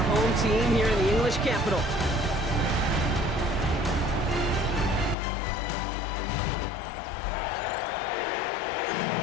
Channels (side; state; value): right; drops out; at 5.2 s